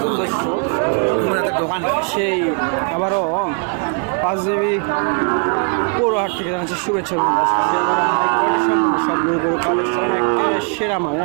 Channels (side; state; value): left; quieter; 38.9 dB